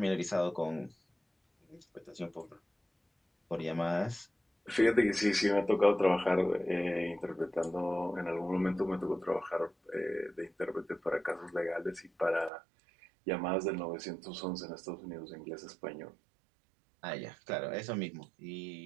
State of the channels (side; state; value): left; drops out; at 12.5 s